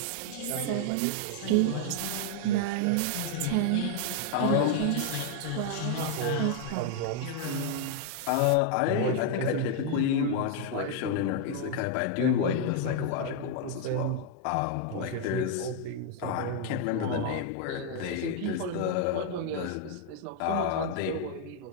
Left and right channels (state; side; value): different; both; correlation 0.00